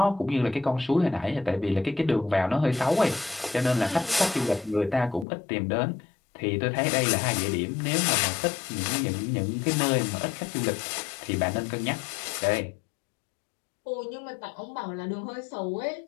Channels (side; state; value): right; drops out; at 5.2 s